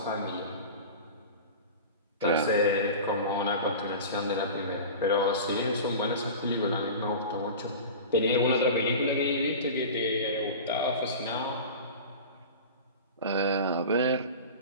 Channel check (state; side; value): inverted; both; correlation -0.33